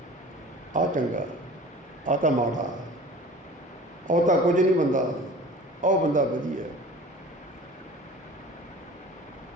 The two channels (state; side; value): normal; both; correlation 0.42